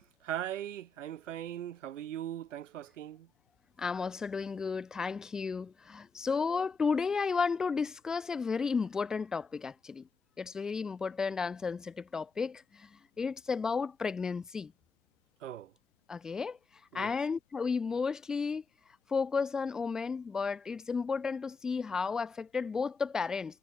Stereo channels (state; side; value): quieter; right; 4.1 dB